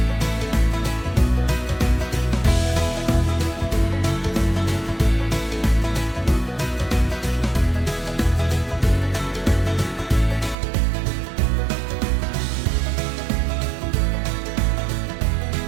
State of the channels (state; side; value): drops out; left; at 10.6 s